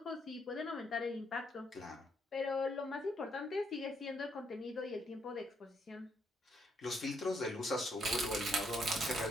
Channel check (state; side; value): normal; both; correlation 0.74